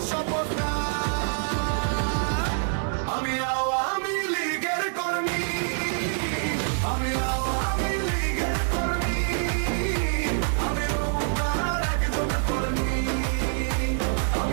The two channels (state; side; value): silent; left; 61 dB below the other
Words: শপথটা। আমি আওয়ামী লীগের কর্মী, আমি আওয়ামী লীগের কর্মী, আমি নৌকার একজন কর্মী,